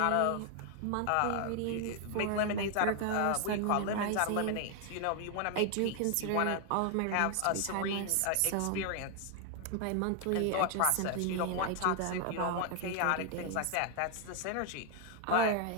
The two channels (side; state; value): both; different; correlation 0.00